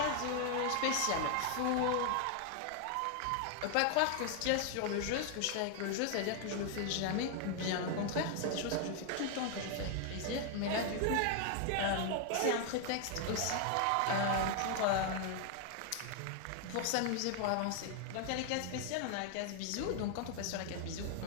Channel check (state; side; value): different; both; correlation 0.00